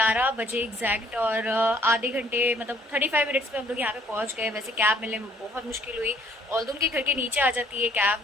बजे एग्जैक्ट, और आधे घंटे मतलब 35 मिनट्स में हम लोग यहाँ पे पहुँच गए। वैसे कैब मिलने में बहुत मुश्किल हुई। ऑल्दो उनके घर के नीचे आ जाती है कैब,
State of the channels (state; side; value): normal; both; correlation 0.61